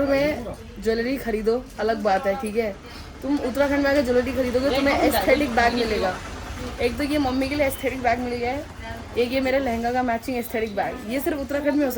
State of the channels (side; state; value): both; identical; correlation 1.00